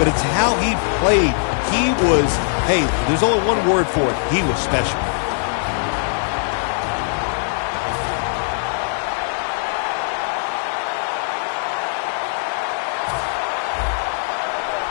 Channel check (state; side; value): silent; right; 61 dB below the other